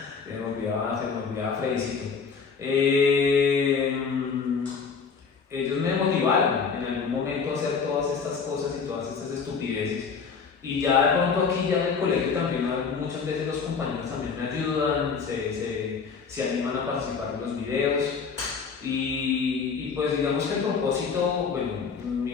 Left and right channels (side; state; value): right; quieter; 5.6 dB